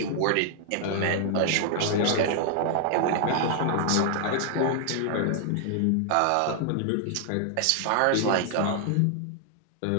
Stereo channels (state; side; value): different; both; correlation 0.00